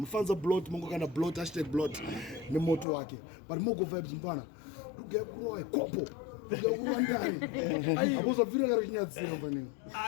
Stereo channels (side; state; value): right; drops out; at 2.9 s